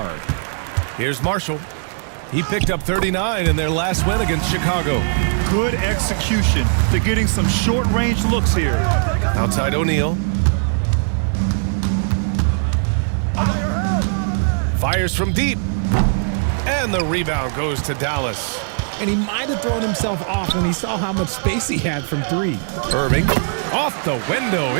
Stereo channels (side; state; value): left; silent; digital silence